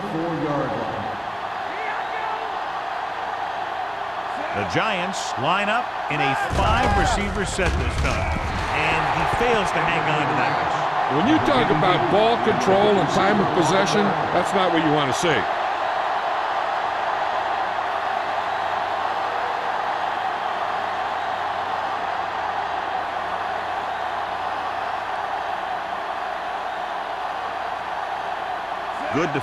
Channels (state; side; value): identical; both; correlation 1.00